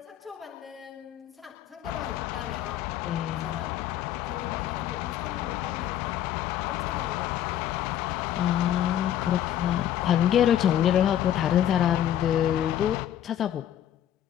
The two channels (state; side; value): quieter; right; 11.2 dB